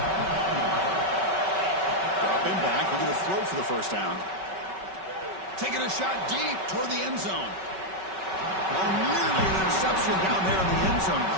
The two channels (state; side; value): late; left; 5.3 ms